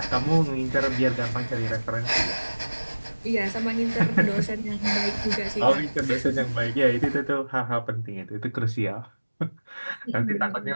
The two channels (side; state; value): both; inverted; correlation -1.00